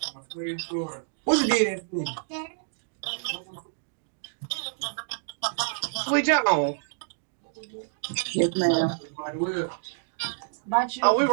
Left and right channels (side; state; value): left; silent; digital silence